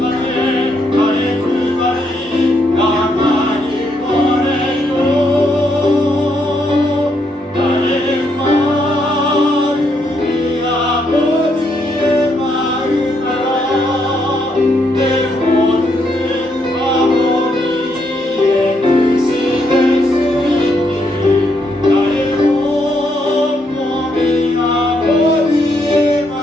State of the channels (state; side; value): normal; both; correlation 0.76